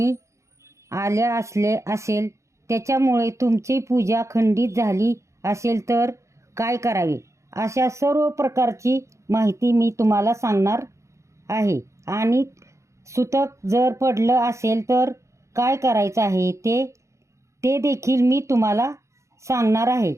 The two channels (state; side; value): late; left; 0.14 ms